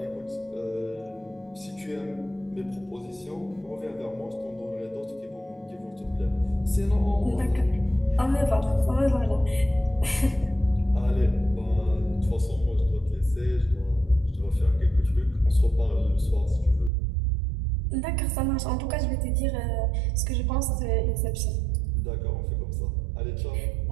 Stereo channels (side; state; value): left; drops out; at 16.9 s